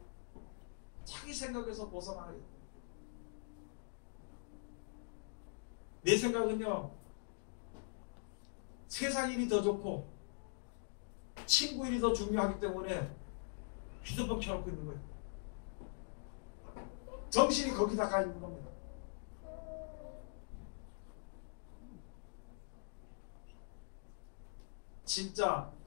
자기 생각에서 벗어나야 돼요. 내 생각은요, 세상 일이 더 좋고 친구 일이 더 중요하기 때문에 휴대폰 켜놓고 있는 거예요. 정신이 거기다 가 있는 겁니다. 진짜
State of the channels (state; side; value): silent; right; digital silence